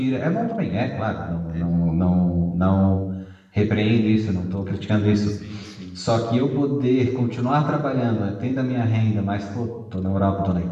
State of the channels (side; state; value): both; identical; correlation 1.00